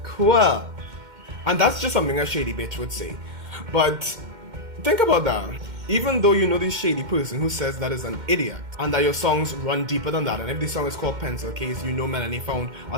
Cool. And that's just something a shady bitch would say. But think about that. Even though you know this shady person who says that is an idiot, and that your songs run deeper than that, and if the song is called Pencil Case, you know Melanie found a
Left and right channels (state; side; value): late; left; 2.1 ms